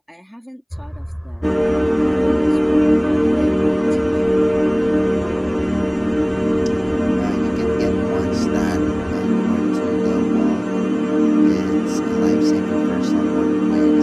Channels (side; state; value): both; identical; correlation 1.00